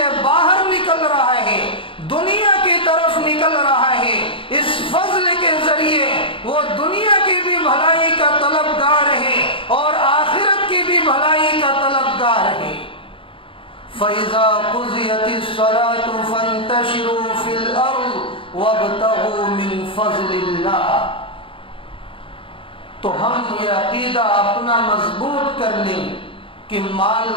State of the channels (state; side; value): late; right; 0.25 ms